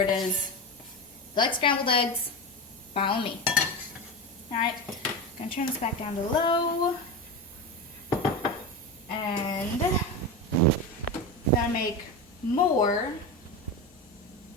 is, you like scrambled eggs, follow me. Alright, gonna turn this back down to low. And gonna make more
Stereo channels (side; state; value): both; normal; correlation 0.20